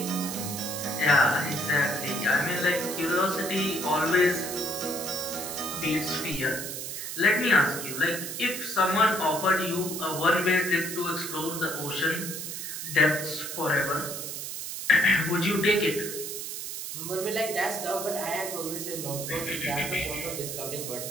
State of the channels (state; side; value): noise; right; hiss, 6 dB below the sound